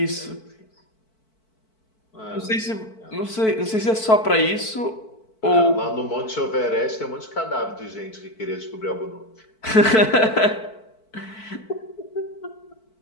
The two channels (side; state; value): right; late; 4.5 ms